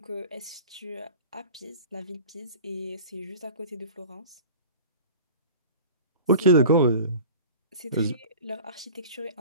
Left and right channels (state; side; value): inverted; both; correlation -0.40